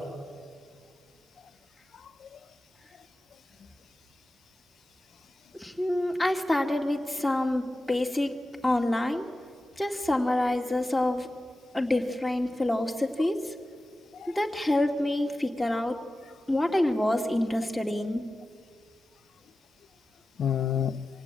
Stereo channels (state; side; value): normal; both; correlation 0.94